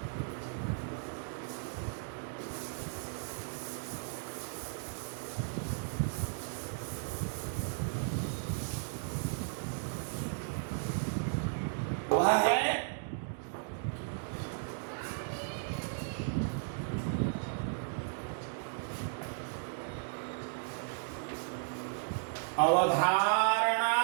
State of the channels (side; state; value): left; silent; digital silence